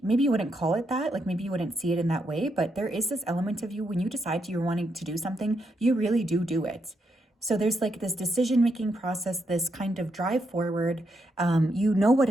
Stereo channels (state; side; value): normal; both; correlation 0.80